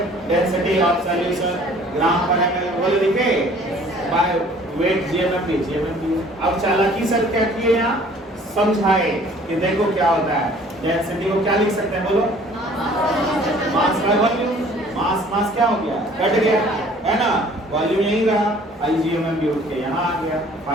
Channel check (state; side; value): normal; both; correlation 0.53